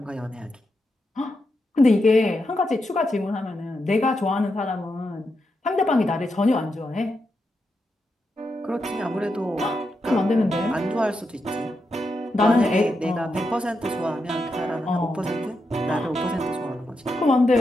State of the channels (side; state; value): both; normal; correlation 0.85